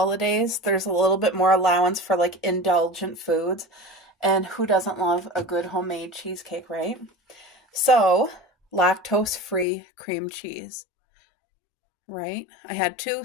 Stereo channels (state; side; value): drops out; right; at 9.7 s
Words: there's a little bit more allowance for like indulgent foods. And who doesn't love a good homemade cheesecake, right? So, lactose-free cream cheese. Right? I had